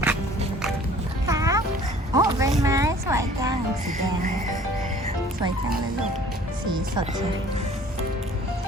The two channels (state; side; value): normal; both; correlation 0.51